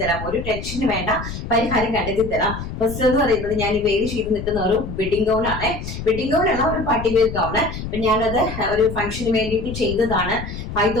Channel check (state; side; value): noise; left; rumble, 8 dB below the sound